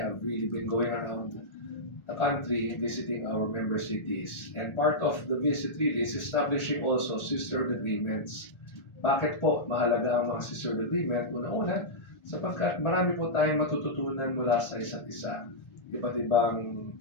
really been going around the country visiting our member cities. And part of the visit really is establishing also sisterhood agreements. Bakit po mahalaga ang mga sisterhood agreement? Una-una, sapagkat marami po tayong matututunan mula sa isa't isa. Iba't ibang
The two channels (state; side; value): late; right; 1.4 ms